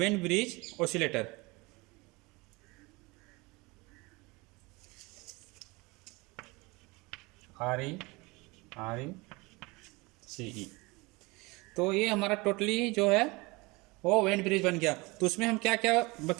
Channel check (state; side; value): quieter; left; 24.6 dB